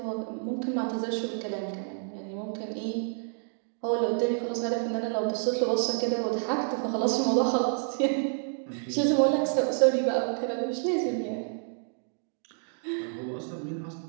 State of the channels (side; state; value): left; silent; digital silence